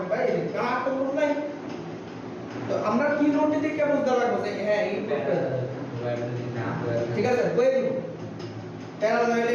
বাই কার তো প্রুফ নাই। তো আমরা কি নোট দিয়ে কি বুঝতে লাগবে যে হ্যাঁ এই প্রুফটা, ঠিক আছে, কই দিব প্যারালাল ওয়্যার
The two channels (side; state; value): both; identical; correlation 1.00